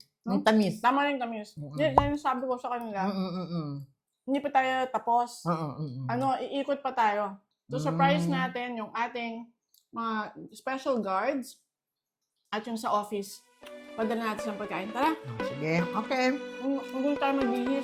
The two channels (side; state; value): both; identical; correlation 1.00